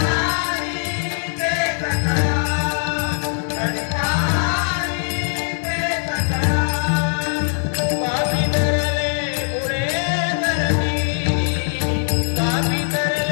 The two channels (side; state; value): right; silent; digital silence